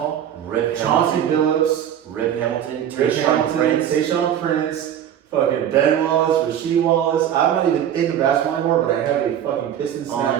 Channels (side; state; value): left; quieter; 10.0 dB